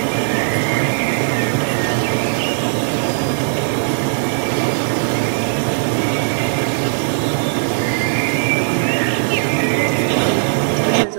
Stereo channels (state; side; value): silent; left; digital silence